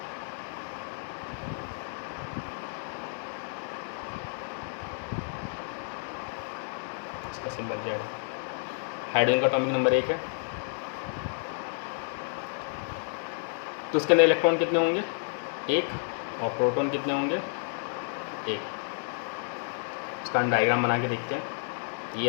इसका सिंबल Z है। हाइड्रोजन का एटॉमिक नंबर 1 है, तो उसके अंदर इलेक्ट्रॉन कितने होंगे, 1, और प्रोटॉन कितने होंगे, 1। इसका हम डायग्राम बना के देखते हैं। ये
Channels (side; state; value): right; silent; 58 dB below the other